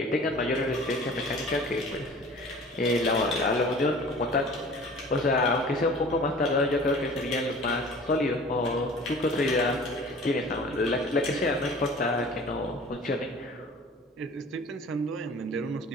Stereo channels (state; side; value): normal; both; correlation 0.44